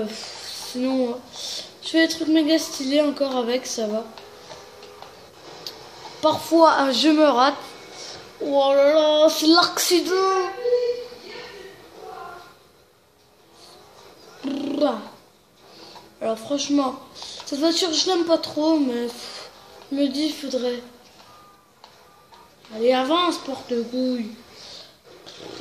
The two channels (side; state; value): both; identical; correlation 1.00